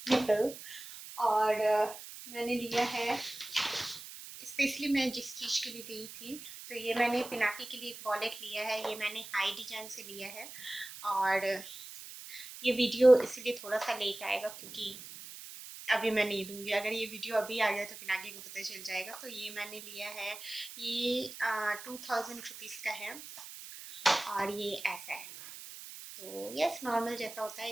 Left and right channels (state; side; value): noise; right; hiss, 13 dB below the sound